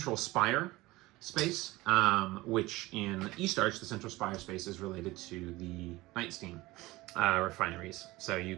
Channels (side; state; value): left; quieter; 19.8 dB